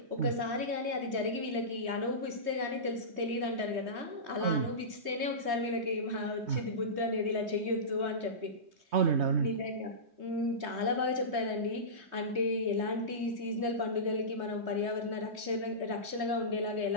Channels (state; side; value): late; left; 3.2 ms